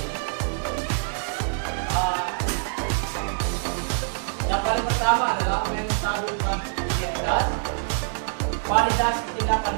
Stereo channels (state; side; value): silent; left; digital silence